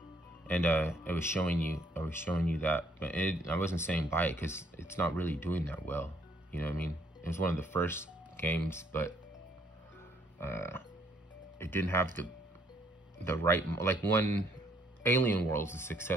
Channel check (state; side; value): normal; both; correlation 0.66